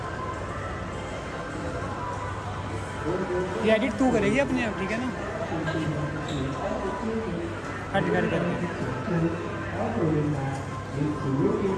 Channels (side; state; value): both; identical; correlation 1.00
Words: ये एडिट तू करेगी अपने आप, ठीक है ना? हट कर